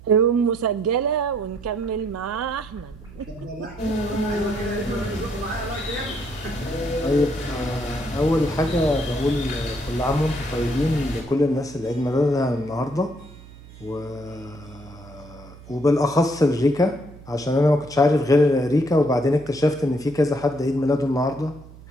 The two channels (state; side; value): noise; right; hum, 19 dB below the sound